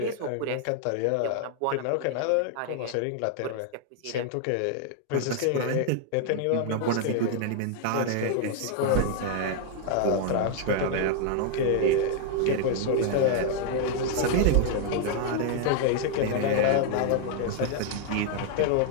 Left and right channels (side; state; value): both; different; correlation 0.00